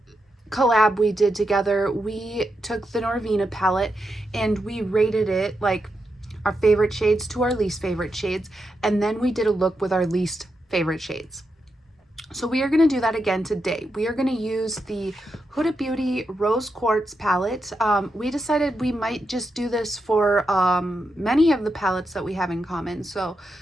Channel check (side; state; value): both; normal; correlation 0.85